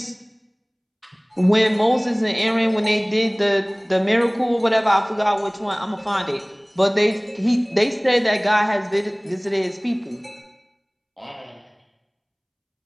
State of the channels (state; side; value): identical; both; correlation 1.00